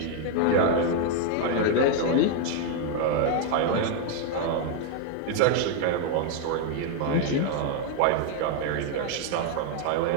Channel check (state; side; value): different; both; correlation 0.00